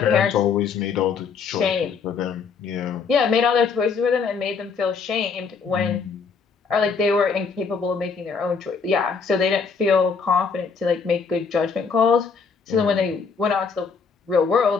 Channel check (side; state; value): right; quieter; 5.5 dB